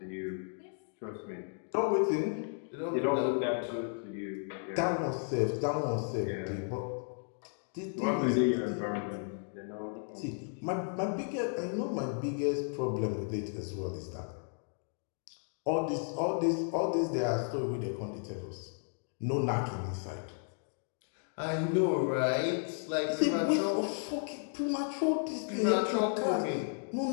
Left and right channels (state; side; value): silent; right; 55 dB below the other